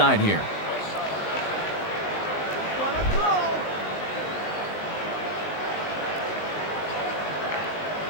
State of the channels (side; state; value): right; late; 19 ms